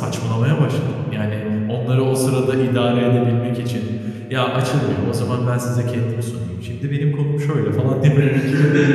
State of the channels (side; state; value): both; identical; correlation 1.00